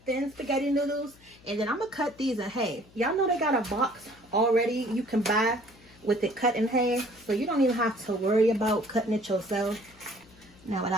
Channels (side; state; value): left; noise; hum, 26 dB below the sound